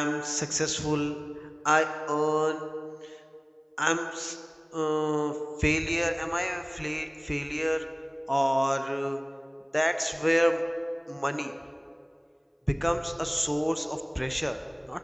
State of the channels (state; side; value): identical; both; correlation 1.00